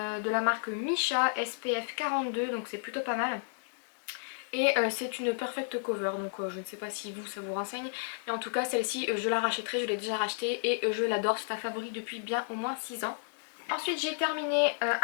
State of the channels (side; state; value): right; silent; digital silence